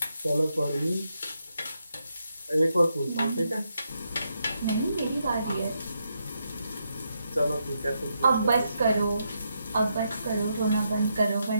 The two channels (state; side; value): inverted; both; correlation -0.81